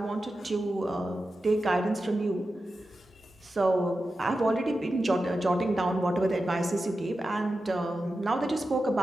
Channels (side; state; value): both; normal; correlation 0.92